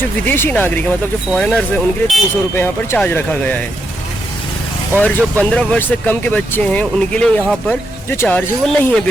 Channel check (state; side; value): normal; both; correlation 0.81